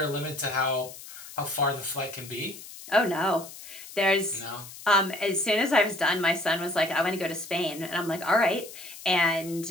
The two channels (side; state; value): left; noise; hiss, 15 dB below the sound